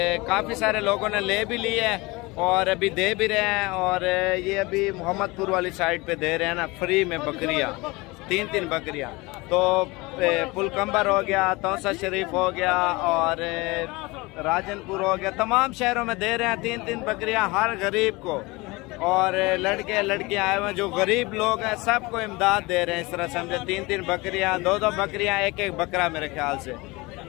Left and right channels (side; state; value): right; quieter; 23.6 dB